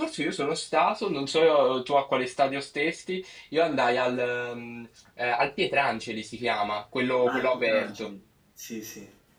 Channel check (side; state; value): both; identical; correlation 1.00